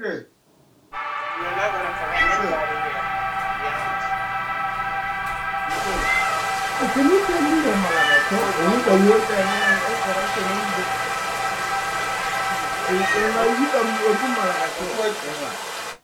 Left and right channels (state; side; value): identical; both; correlation 1.00